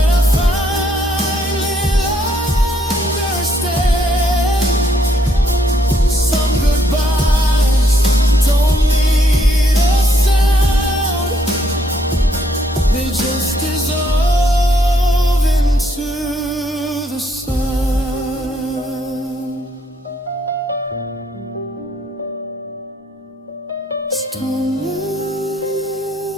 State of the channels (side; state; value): both; normal; correlation 0.71